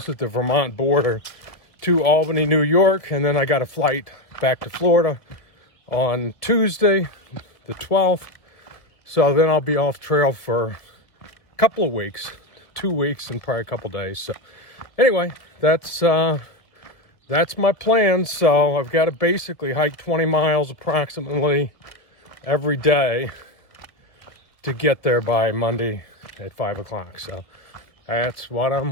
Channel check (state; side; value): late; right; 1.5 ms